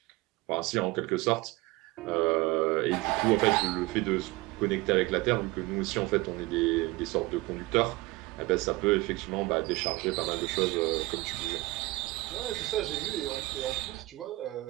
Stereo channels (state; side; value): quieter; left; 21.1 dB